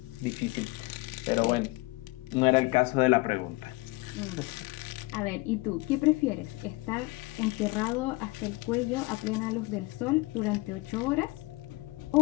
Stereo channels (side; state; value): right; quieter; 23.1 dB